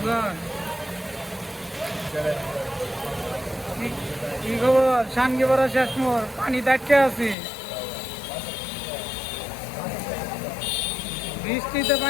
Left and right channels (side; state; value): right; drops out; at 7.4 s